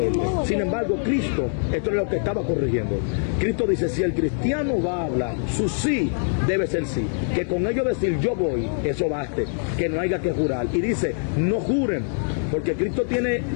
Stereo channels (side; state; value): right; silent; digital silence